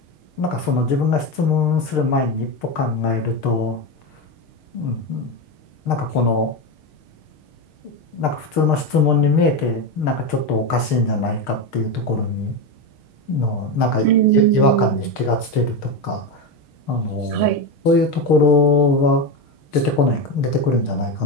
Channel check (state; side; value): late; right; 6.5 ms